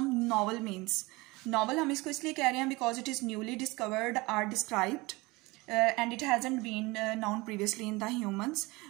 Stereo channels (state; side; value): quieter; left; 23.1 dB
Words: novel means? Novel हम इसको इसलिए कह रहे हैं because it is newly discovered or described and it hasn't been known previously in the humans.